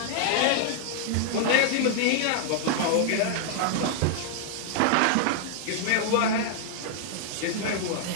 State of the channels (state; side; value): different; both; correlation 0.00